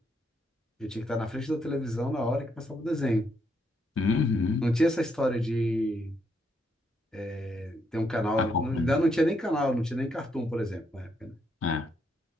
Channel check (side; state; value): both; normal; correlation 0.76